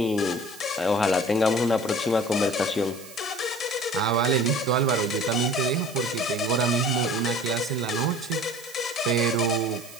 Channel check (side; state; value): right; noise; hiss, 18 dB below the sound